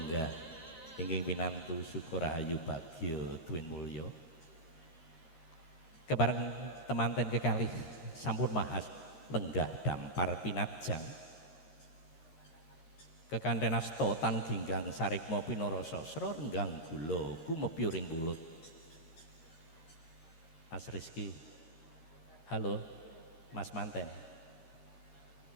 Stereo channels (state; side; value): late; right; 12 ms